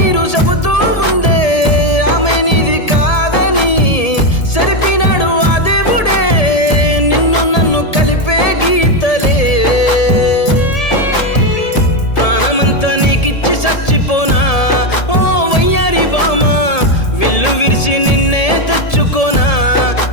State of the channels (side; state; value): right; late; 1.7 ms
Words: చెబుతూ ఉందే ఆమె నీది కాదని సరిపినాడు ఆ దేవుడే నిన్ను నన్ను కలిపే గీతలే ప్రాణమంతా నీకిచ్చి చచ్చిపోనా ఓ వయ్యారి బామా విల్లు విరిసి నిన్నే తెచ్చుకోనా